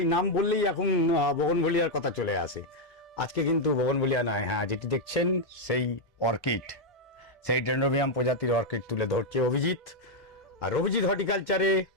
নাম বললেই এখন বগনভেলিয়ার কথা চলে আসে। আজকে কিন্তু বগনভেলিয়া নয়, হ্যাঁ যেটি দেখছেন সেই অর্কিড, সেই ডেন্ড্রোবিয়াম প্রজাতির অর্কিড তুলে ধরছে অভিজিৎ। আর অভিজিৎ হর্টিকালচারে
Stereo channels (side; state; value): both; normal; correlation 0.00